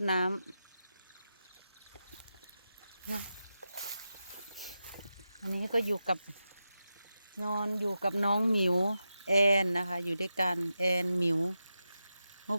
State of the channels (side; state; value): both; inverted; correlation -0.90